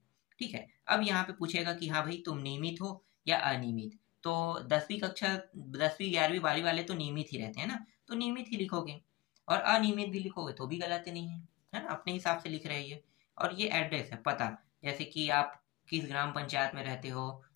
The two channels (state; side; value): quieter; right; 20.2 dB